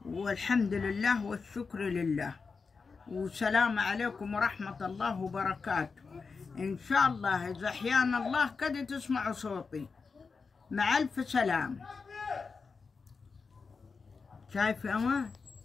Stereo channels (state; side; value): quieter; right; 4.9 dB